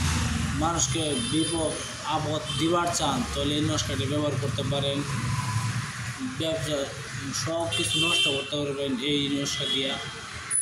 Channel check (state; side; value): identical; both; correlation 1.00